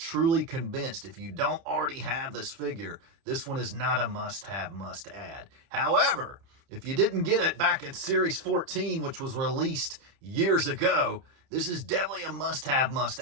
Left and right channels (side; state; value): left; late; 30 ms